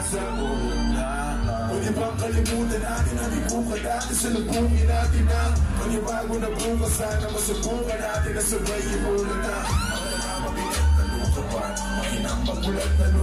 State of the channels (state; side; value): identical; both; correlation 1.00